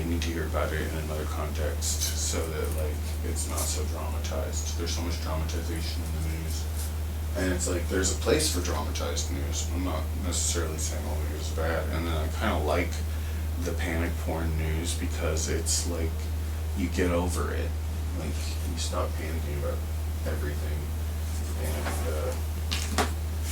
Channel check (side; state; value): both; identical; correlation 1.00